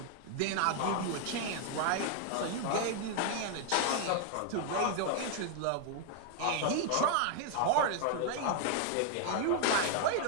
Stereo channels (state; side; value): different; both; correlation 0.00